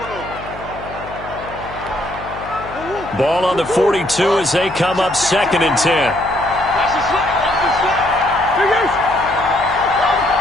Ball on the 42 as they come up 2nd and 10.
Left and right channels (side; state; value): left; noise; hum, 15 dB below the sound